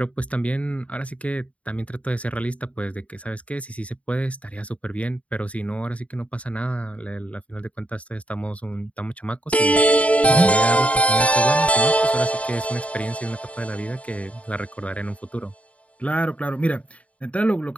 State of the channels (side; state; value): right; late; 0.065 ms